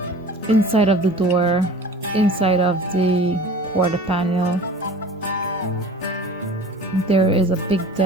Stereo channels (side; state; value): both; normal; correlation 0.43